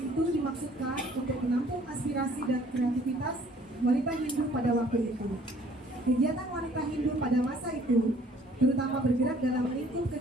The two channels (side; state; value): both; normal; correlation 0.57